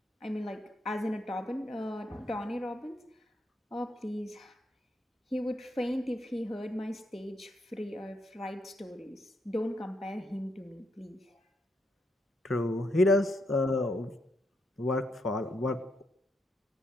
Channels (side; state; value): both; normal; correlation 0.78